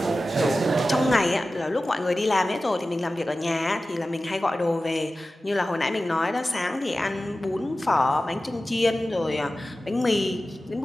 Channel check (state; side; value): normal; both; correlation 0.95